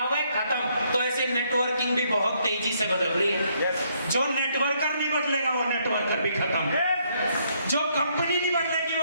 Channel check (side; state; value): both; inverted; correlation -0.71